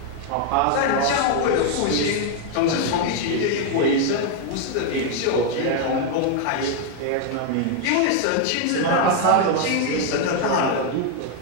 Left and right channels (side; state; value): both; different; correlation 0.01